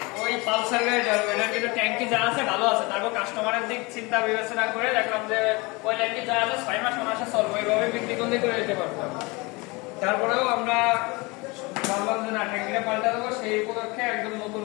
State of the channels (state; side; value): quieter; right; 25.6 dB